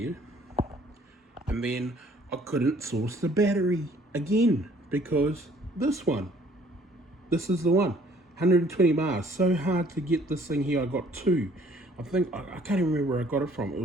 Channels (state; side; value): normal; both; correlation 0.59